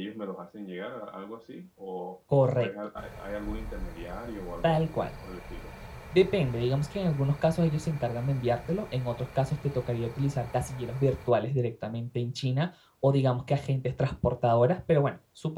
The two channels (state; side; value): identical; both; correlation 1.00